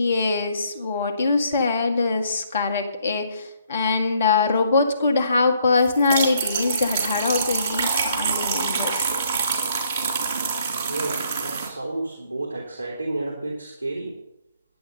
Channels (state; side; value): inverted; both; correlation -0.67